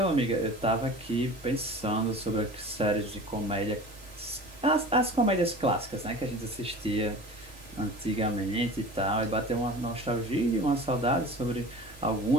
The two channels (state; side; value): normal; both; correlation 0.38